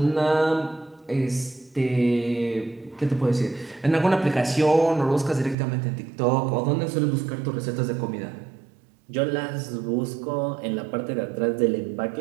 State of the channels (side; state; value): left; drops out; at 5.6 s